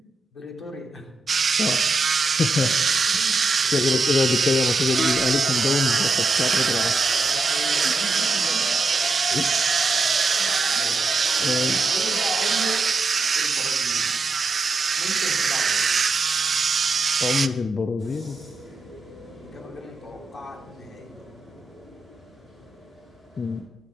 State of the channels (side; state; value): left; quieter; 3.2 dB